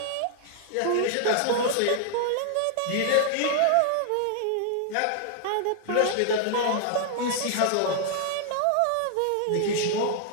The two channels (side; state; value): both; different; correlation 0.00